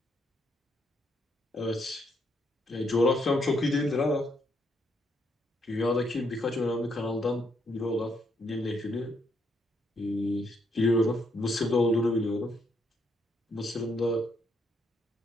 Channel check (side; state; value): both; normal; correlation 0.74